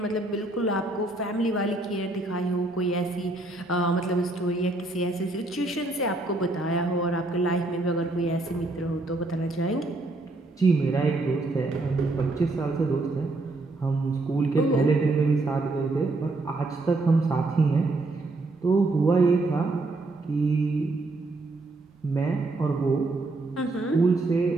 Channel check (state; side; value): quieter; left; 3.0 dB